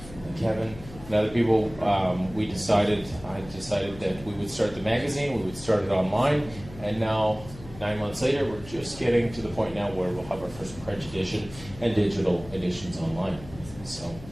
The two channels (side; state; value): left; noise; hum, 16 dB below the sound